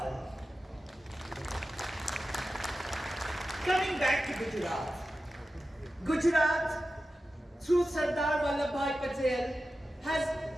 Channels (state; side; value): normal; both; correlation 0.93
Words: Coming back to Gujarat. Gujarat, through Sardar Vallabhbhai Patel, has